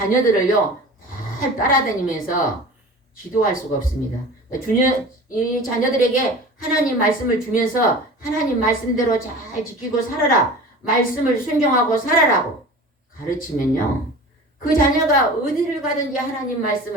잘 따라다니면서 지도할 수가 없습니다. 이 자녀들에게 하나님 말씀을 주면서 하나님 말씀대로 잘 지키고 살아라, 말씀을 순종하고 살아라고 가르치면요 그 자녀가 어디를 가든지 하나님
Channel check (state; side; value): normal; both; correlation 0.38